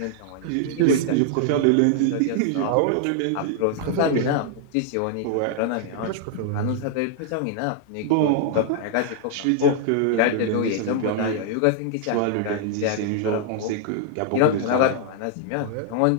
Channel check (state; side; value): different; both; correlation 0.00